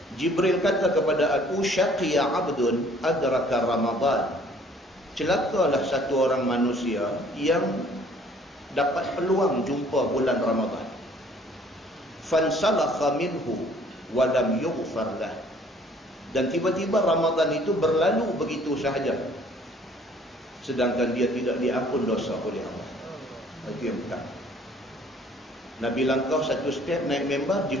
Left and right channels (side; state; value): both; normal; correlation 0.57